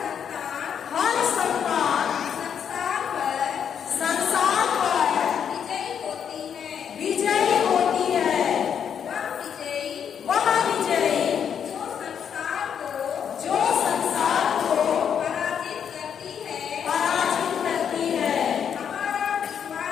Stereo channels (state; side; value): quieter; right; 8.0 dB